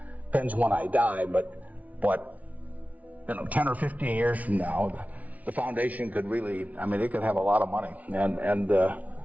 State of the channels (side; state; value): left; late; 0.071 ms